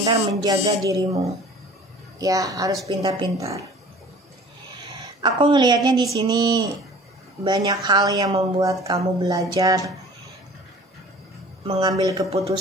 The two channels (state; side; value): normal; both; correlation 0.46